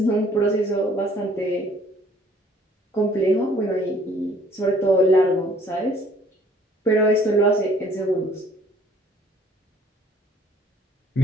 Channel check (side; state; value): both; normal; correlation 0.58